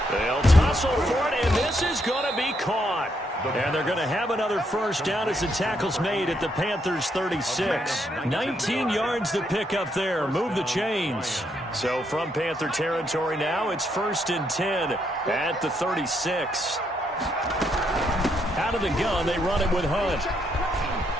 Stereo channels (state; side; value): normal; both; correlation 0.76